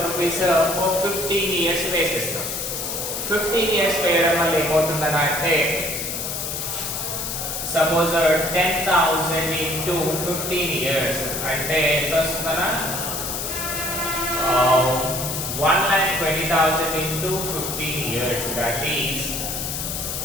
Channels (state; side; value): noise; left; hiss, 4 dB below the sound